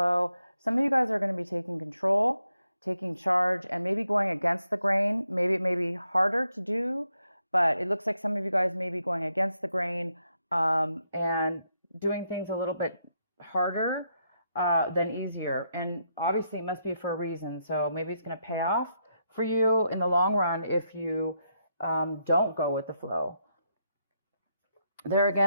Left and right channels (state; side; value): inverted; both; correlation -0.79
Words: Some of you guys are going to be taking control, taking charge, and maybe going against the grain. Maybe it may be harder to do, but it looks like some of you guys may be going against the grain and doing things a little bit harder than easier. And obviously, it must be for a reason. So maybe it's going to pay off for you in the long run if you don't go with the flow. There